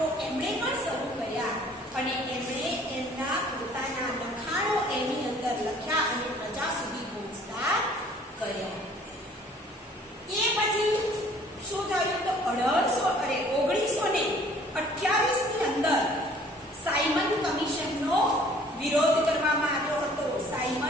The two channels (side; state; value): both; normal; correlation 0.55